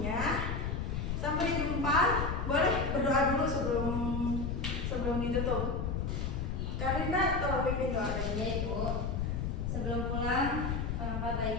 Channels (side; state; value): left; noise; rumble, 1 dB below the sound